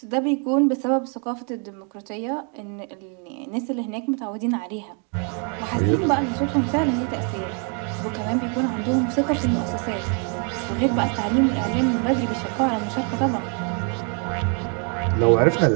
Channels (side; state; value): left; quieter; 39.0 dB